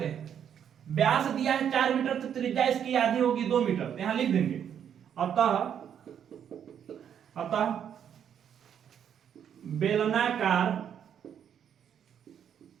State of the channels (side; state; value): left; quieter; 8.8 dB